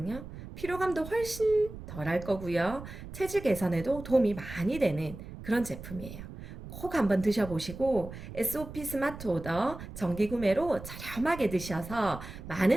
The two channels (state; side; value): noise; right; rumble, 12 dB below the sound